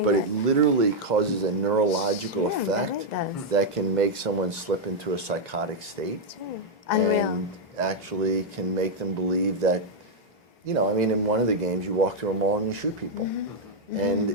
but it literally causes a neurological effect that can make someone slip into a psychotic state. And actually can make them believe that, you know, I mean, in one of the games you walk through a mall and you shoot people.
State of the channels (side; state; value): both; normal; correlation -0.02